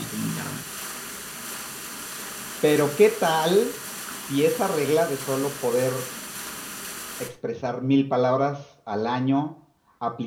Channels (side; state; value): both; identical; correlation 1.00